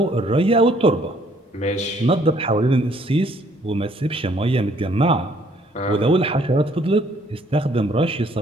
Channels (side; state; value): both; normal; correlation 0.63